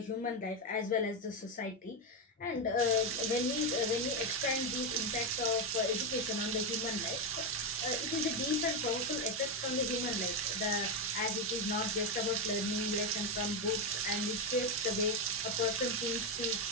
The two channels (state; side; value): normal; both; correlation 0.08